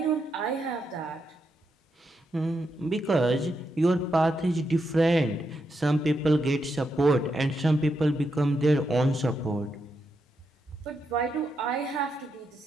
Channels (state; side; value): normal; both; correlation 0.83